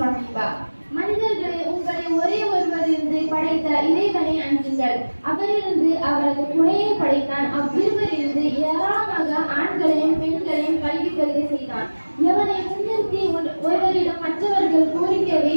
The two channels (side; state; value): both; inverted; correlation -1.00